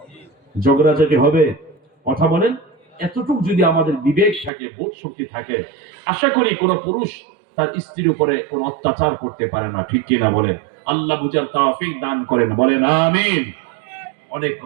ঝগড়াঝাটি হবে? কথা বলেন। এতটুকু যদি আমাদের বিবেক থাকে, বোধ শক্তি থাকে, আশা করি কোন পুরুষ তার স্ত্রীর উপরে কোন অত্যাচার করতে পারে না, ঠিক কিনা বলেন? আল্লাহ বুঝার তৌফিক দান করেন, বলেন আমিন। অনেক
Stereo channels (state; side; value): drops out; left; at 4.5 s